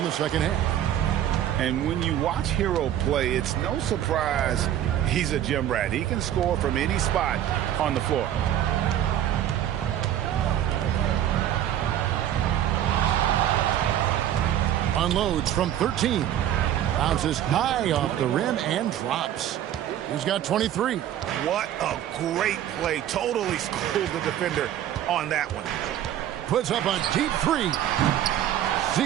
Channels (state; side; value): quieter; left; 11.3 dB